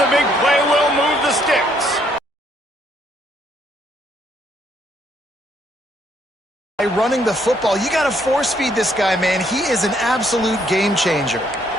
big play will move the sticks. By running the football, you got to force feed this guy, man. He is an absolute game changer.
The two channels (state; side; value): normal; both; correlation 0.69